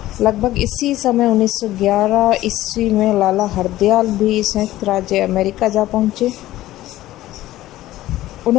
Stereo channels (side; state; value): right; quieter; 15.3 dB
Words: लगभग इसी समय 1911 ईस्वी में लाला हरदयाल भी संयुक्त राज्य अमेरिका जा पहुंचे।